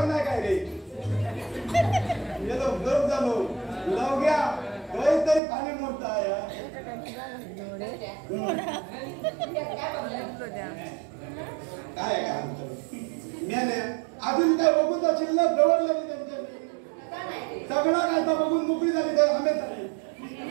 नाही काय रे. गेलो गरम झालो लवग्या काहीतरी खाली मोडता या काय काय मेले अजून काय बघून तर शिल्लक दवडलं नाही त्यांच्या सगळं काय तर बघून मोकळी झाली तर आंबे झाले.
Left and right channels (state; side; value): drops out; left; at 5.4 s